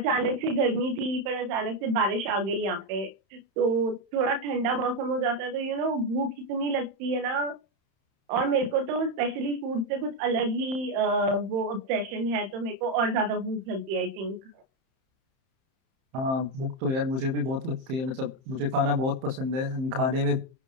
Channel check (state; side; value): late; left; 30 ms